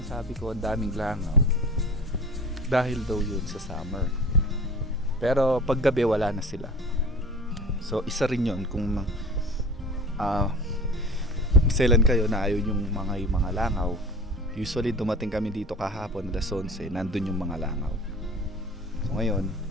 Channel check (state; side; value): normal; both; correlation 0.40